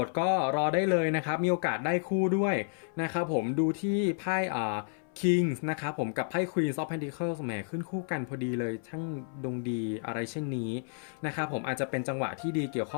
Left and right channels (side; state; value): right; silent; 57 dB below the other